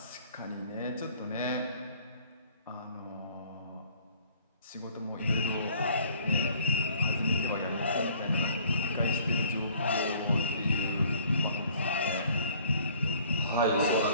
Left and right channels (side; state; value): both; inverted; correlation -0.56